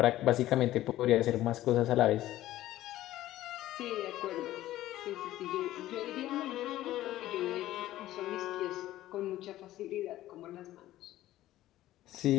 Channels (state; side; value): quieter; right; 14.7 dB